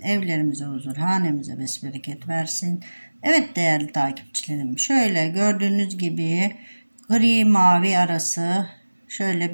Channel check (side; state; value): both; inverted; correlation -1.00